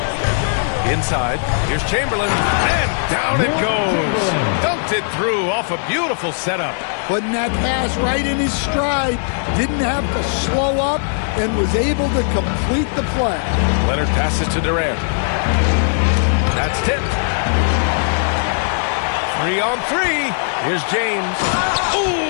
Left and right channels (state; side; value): silent; right; digital silence